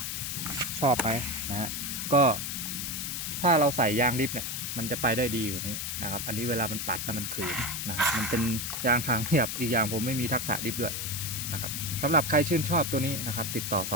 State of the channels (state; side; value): noise; left; hiss, 3 dB below the sound